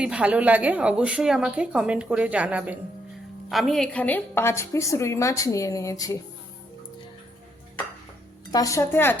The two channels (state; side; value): normal; both; correlation 0.75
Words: ভালো লাগে অবশ্যই আমাকে কমেন্ট করে জানাবেন। আমি এখানে 5 পিস রুই মাছ নিয়ে নিয়েছি। তার সাথে